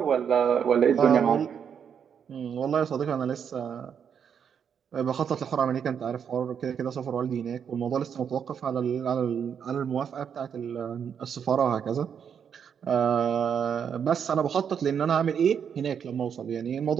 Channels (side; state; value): left; quieter; 7.6 dB